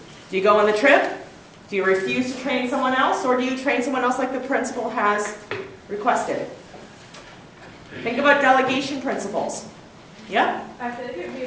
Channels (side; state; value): both; identical; correlation 1.00